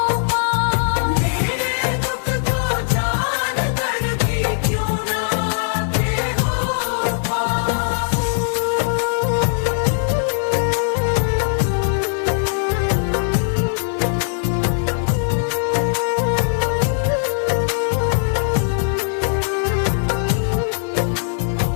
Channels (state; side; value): silent; right; 66 dB below the other